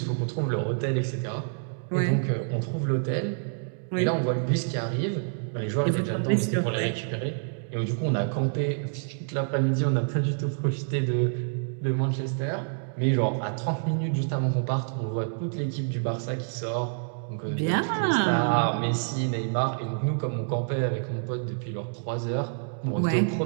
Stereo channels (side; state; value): left; silent; digital silence